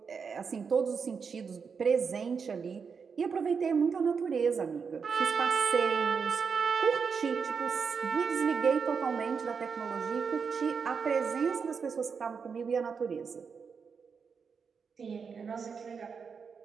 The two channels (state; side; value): quieter; left; 5.9 dB